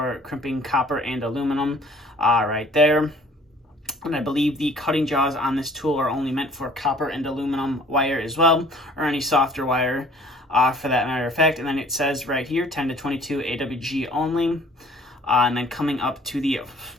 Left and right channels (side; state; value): both; normal; correlation 0.54